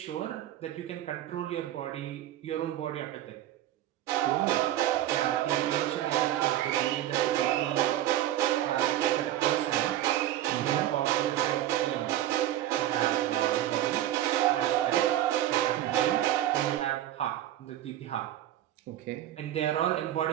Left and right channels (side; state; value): left; quieter; 13.1 dB